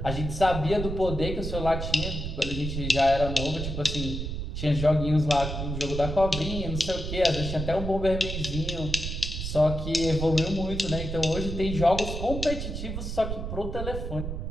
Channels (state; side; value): noise; right; rumble, 5 dB below the sound